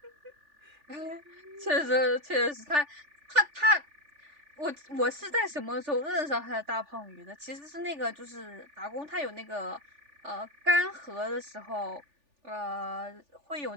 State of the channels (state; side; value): late; left; 3.4 ms